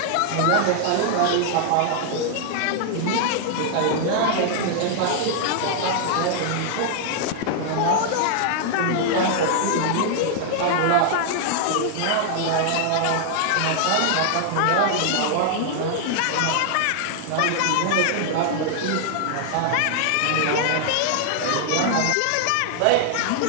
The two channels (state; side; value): different; both; correlation 0.00